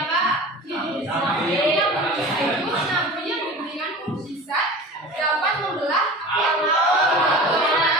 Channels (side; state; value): both; normal; correlation 0.36